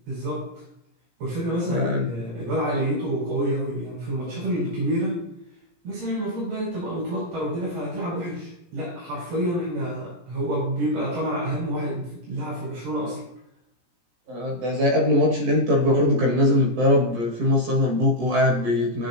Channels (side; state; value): left; late; 17 ms